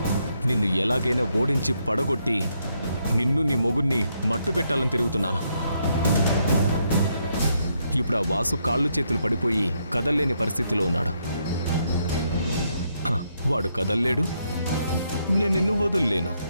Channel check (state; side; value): inverted; both; correlation -0.77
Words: నిన్ను ఎలాగైనా ఓడించి పడగొట్టి నిన్ను నీ మొగుణ్ణి మట్టు పెట్టాలని తిరుగుతున్నాను. ఇప్పుడు ఆ వాసు కాళ్ళు చేతులు పడిపోయి కదల్లేని పరిస్థితిలో ఉన్నాడు. వాడు కదల్లేడు, నేను నిన్ను వదుల్లేను.